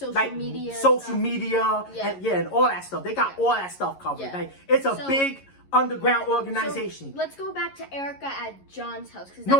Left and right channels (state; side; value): late; right; 11 ms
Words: media, and all that stuff. They got all that stuff covered. Yeah. Like, it's a big underground organization. So let's go back to Erica at John's house.